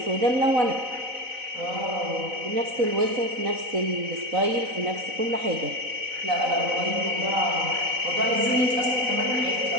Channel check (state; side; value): late; left; 4.0 ms